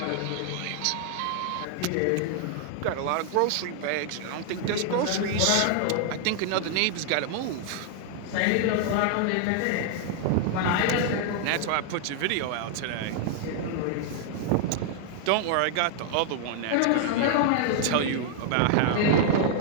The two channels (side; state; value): both; different; correlation 0.00